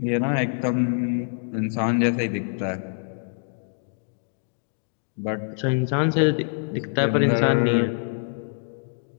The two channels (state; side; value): silent; right; digital silence